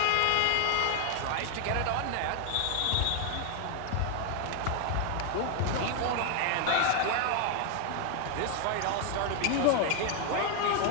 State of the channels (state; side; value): different; both; correlation 0.00